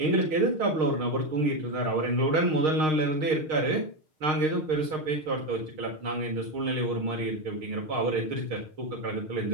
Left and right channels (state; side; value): late; left; 6.5 ms